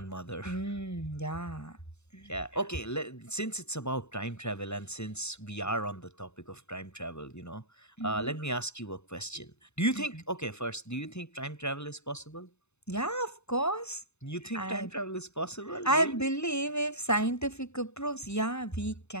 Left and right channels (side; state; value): right; late; 0.81 ms